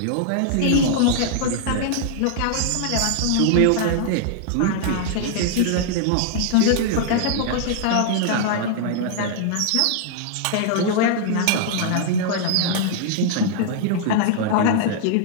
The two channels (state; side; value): different; both; correlation -0.01